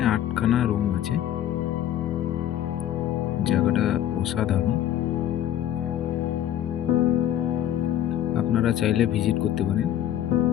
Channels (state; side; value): quieter; right; 11.4 dB